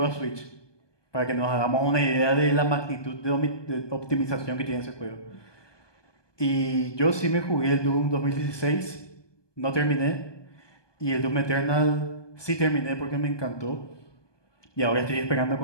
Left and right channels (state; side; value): late; right; 1.2 ms